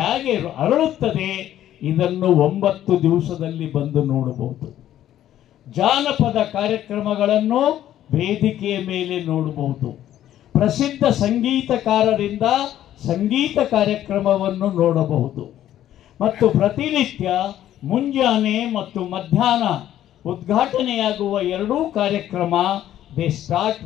ಅರಳುತ್ತದೆ ಇದನ್ನು 9 ದಿವಸದಲ್ಲಿ ಬಂದು ನೋಡಬಹುದು. ಜಾನಪದ ಕಾರ್ಯಕ್ರಮಗಳನ್ನು ವೇದಿಕೆಯ ಮೇಲೆ ನೋಡಬಹುದು. ಪ್ರಸಿದ್ಧ ಸಂಗೀತಕಾರರಿಂದ ಸಂಗೀತ ಕಾರ್ಯಕ್ರಮವನ್ನು ನೋಡಬಹುದು. ಮತ್ತು ಪ್ರತಿನಿತ್ಯ ಮುಂಜಾನೆ ಮತ್ತು ಮಧ್ಯಾಹ್ನ ಉದ್ಘಾಟನೆಯಾಗುವ 2 ಕಾರ್ಯಕ್ರಮ they start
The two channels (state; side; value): quieter; right; 12.1 dB